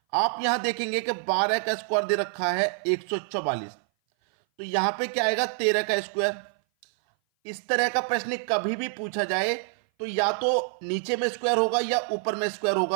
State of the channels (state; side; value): silent; left; 57 dB below the other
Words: आप यहां देखेंगे कि 12 का स्क्वायर दे रखा है 144, तो यहां पे क्या आएगा 13 का स्क्वायर। इस तरह का प्रश्न कभी भी पूछा जाए तो या तो नीचे में स्क्वायर होगा या ऊपर में स्क्वायर